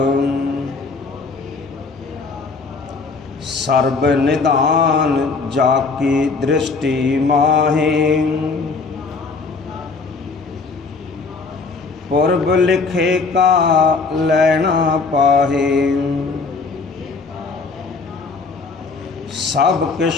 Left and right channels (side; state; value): right; quieter; 4.2 dB